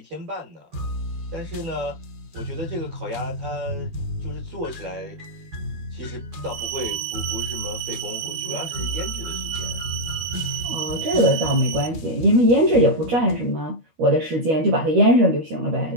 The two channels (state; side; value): late; left; 12 ms